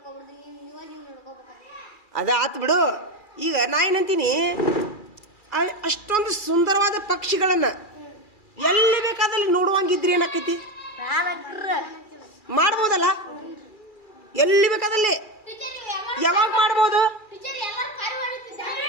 ಅದ ಆತ್ ಬಿಡು. ಈಗ ನಾ ಏನಂತೀನಿ, ಅಷ್ಟೊಂದು ಸುಂದರವಾದ ಪಕ್ಷಿಗಳನ್ನ ಎಲ್ಲಿ ಬೇಕಾದಲ್ಲಿ ನೋಡುವಂಗಿದ್ರಿ ಏನಾಕೈತಿ? ಮಾಡ್ಬೋದಲ್ಲ, ಎಲ್ಲಿ ಬೇಕಾದಲ್ಲಿ ಯಾವಾಗ ಮಾಡ್ಬೋದು?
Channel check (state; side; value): late; right; 2.3 ms